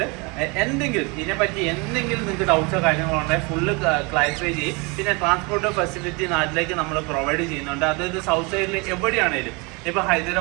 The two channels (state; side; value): quieter; left; 28.8 dB